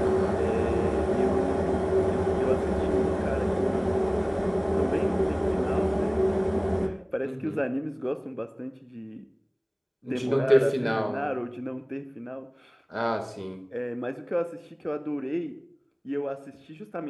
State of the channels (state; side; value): identical; both; correlation 1.00